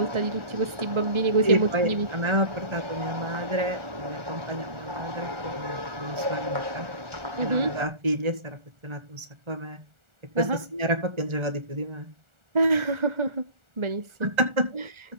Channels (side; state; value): left; late; 1.4 ms